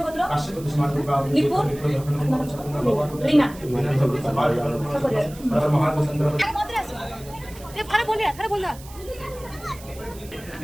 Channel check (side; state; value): right; noise; hiss, 19 dB below the sound